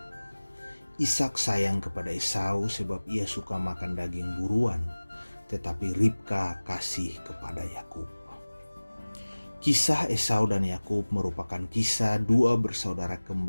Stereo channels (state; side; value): inverted; both; correlation -1.00